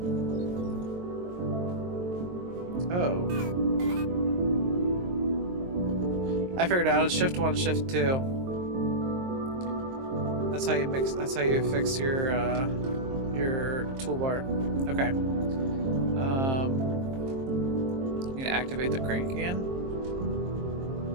Oh. I figured out it's shift 1, shift 2. That's how you mix, that's how you fix your toolbar. Okay. You need to activate the crank again.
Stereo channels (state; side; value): late; left; 23 ms